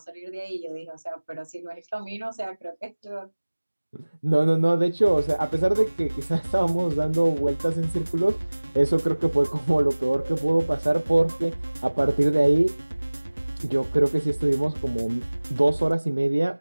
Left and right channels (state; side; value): inverted; both; correlation -1.00